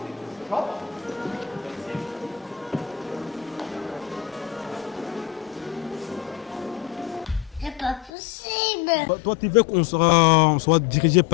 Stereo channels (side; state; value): right; drops out; at 8.1 s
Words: C'est pas possible. Toi, tu veux qu'on soit dirigé